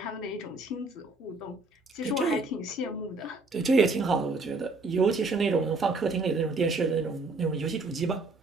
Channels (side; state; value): left; quieter; 3.3 dB